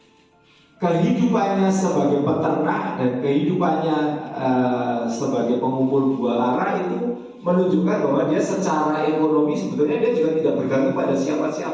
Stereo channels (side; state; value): both; identical; correlation 1.00